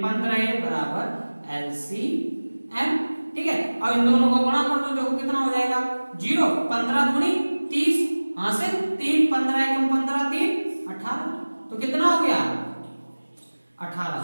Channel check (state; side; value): inverted; both; correlation -1.00